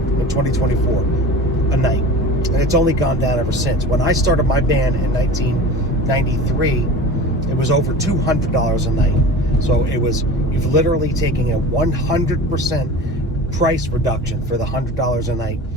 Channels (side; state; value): both; normal; correlation 0.36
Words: 2024 a night. And it's only gone down ever since. When I started my band in 1993, it was over $200 a night. So you've literally taken a 100% price reduction for the $100 a night